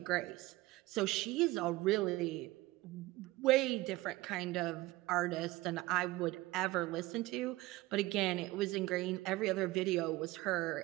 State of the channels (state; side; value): quieter; left; 19.1 dB